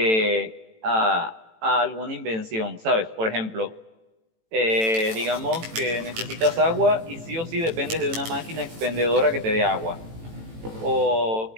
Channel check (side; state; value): left; late; 18 ms